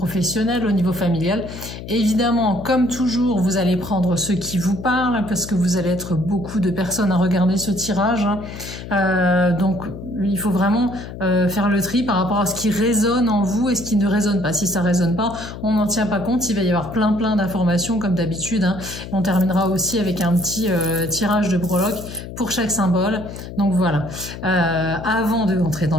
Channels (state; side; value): noise; left; hum, 11 dB below the sound